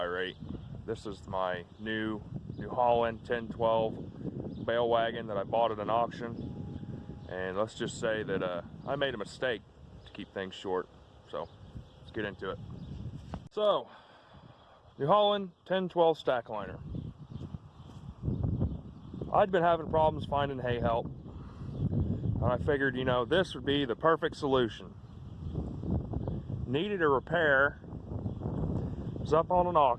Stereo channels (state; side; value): identical; both; correlation 1.00